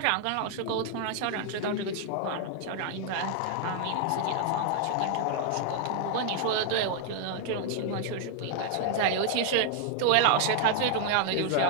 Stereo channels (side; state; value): both; different; correlation 0.00